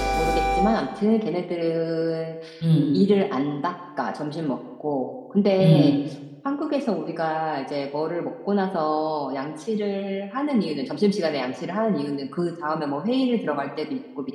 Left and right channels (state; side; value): identical; both; correlation 1.00